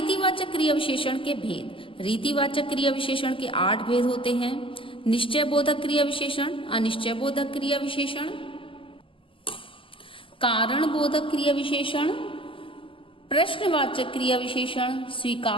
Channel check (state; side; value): late; right; 0.25 ms